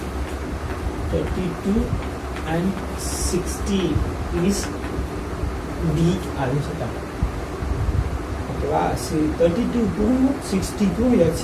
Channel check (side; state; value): both; identical; correlation 1.00